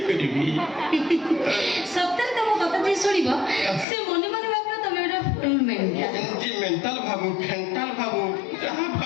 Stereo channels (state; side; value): drops out; right; at 3.9 s